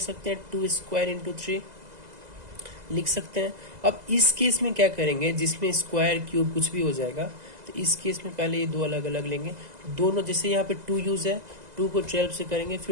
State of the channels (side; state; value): left; late; 2.0 ms